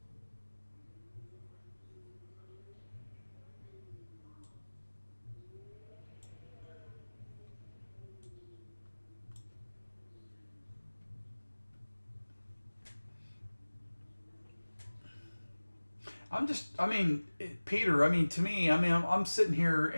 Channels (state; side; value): inverted; both; correlation -1.00